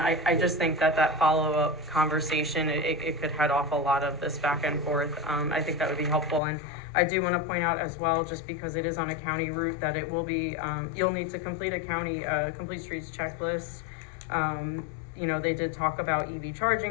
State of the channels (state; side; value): drops out; right; at 6.4 s